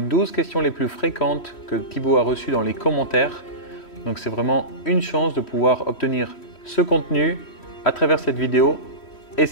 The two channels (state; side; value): late; right; 3.1 ms